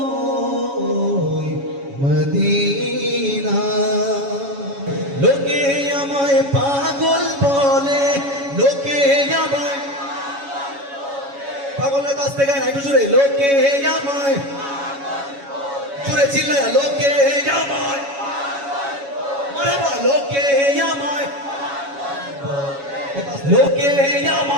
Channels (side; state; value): left; late; 7.2 ms